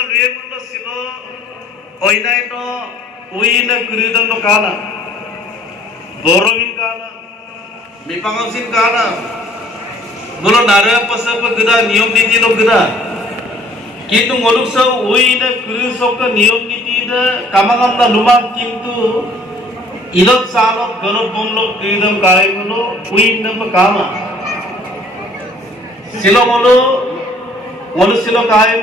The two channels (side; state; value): both; normal; correlation 0.57